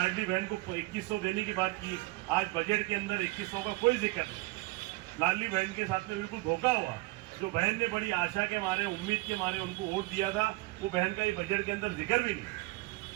बहन को 2100 देने की बात की, आज बजट के अंदर 2100 का कोई जिक्र नहीं। लाडली बहन के साथ में बिल्कुल धोखा हुआ। जो बहन ने बड़ी आशा के मारे, उम्मीद के मारे उनको वोट दिया था, वो बहन का ये बजट के अंदर जिक्र भी नहीं।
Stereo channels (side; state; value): left; quieter; 22.1 dB